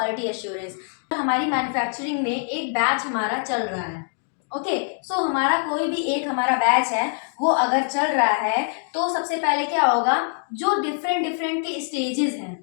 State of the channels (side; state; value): right; silent; 63 dB below the other